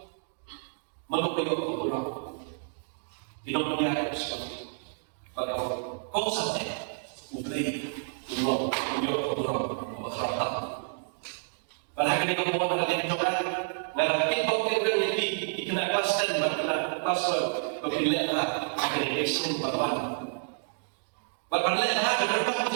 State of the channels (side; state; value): left; silent; digital silence